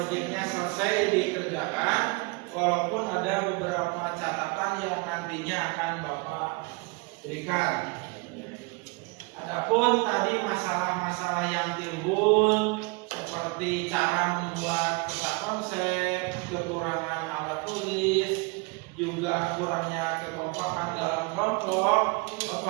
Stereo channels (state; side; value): quieter; left; 28.5 dB